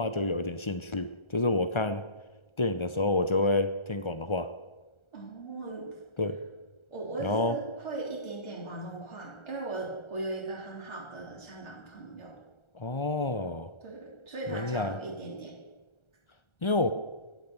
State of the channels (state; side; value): late; right; 1.3 ms